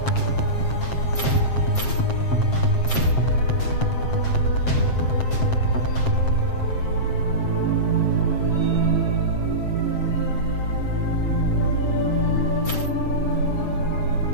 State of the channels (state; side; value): late; right; 7.6 ms